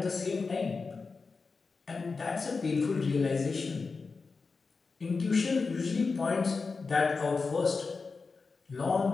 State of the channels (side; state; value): right; quieter; 4.5 dB